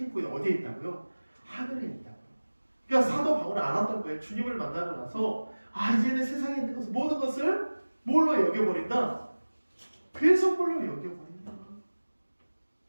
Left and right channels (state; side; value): inverted; both; correlation -1.00